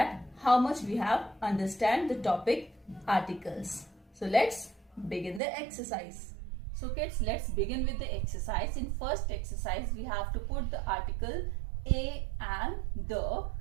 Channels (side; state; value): left; drops out; at 5.4 s